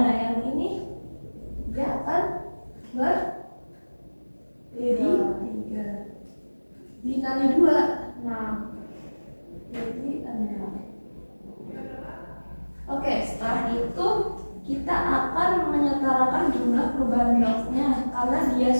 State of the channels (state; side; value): inverted; both; correlation -1.00